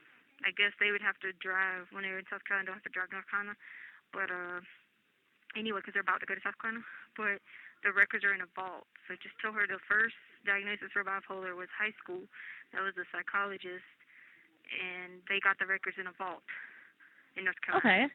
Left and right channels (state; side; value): identical; both; correlation 1.00